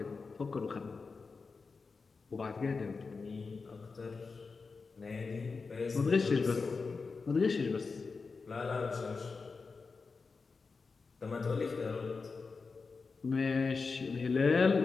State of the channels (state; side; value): quieter; right; 4.5 dB